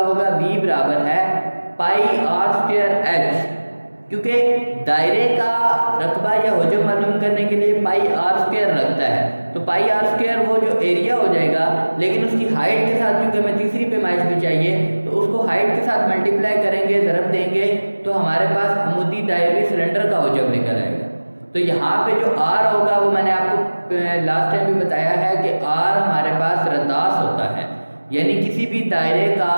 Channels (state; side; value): inverted; both; correlation -1.00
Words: V برابر ہے پائی آر اسکوائر ایچ. کیونکہ دائرے کا رقبہ یا حجم معلوم کرنے کے لیے پائی آر اسکوائر لگتا ہے, تو پائی آر اسکوائر وہ جو ایریا ہو جائے گا, لیکن اس کی ہائٹ کے ساتھ کیونکہ ہمیں تیسری پیمائش بھی چاہیے تو اس کو ہائٹ کے ساتھ ملٹیپلائی کریں گے, ضرب دیں گے تو ہمارے پاس عمودی دائروی سلنڈر کا حجم نکل آئے گا. تو یہاں پہ جو آر ہوگا وہ میں نے آپ کو لاسٹ ٹائم بھی بتایا ہے کہ آر ہمارے پاس رداس ہوتا ہے, یعنی کسی بھی دائرے کا